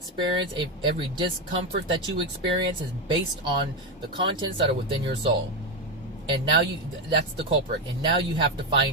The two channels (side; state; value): both; normal; correlation 0.10